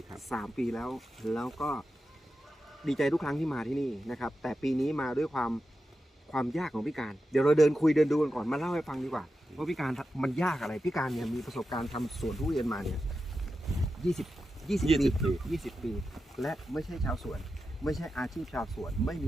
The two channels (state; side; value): normal; both; correlation 0.90